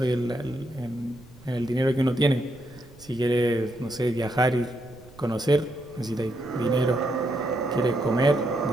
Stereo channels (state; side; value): noise; right; rumble, 23 dB below the sound